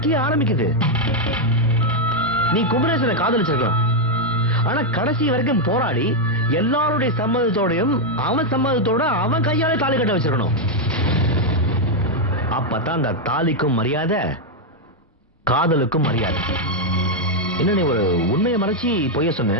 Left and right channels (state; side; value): normal; both; correlation 0.00